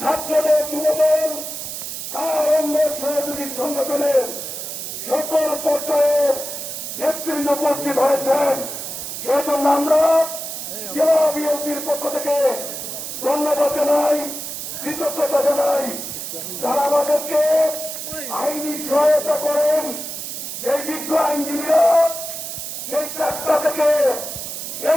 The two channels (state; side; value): noise; right; hiss, 7 dB below the sound